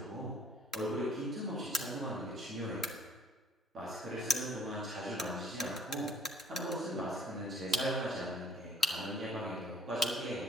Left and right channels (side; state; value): both; normal; correlation 0.57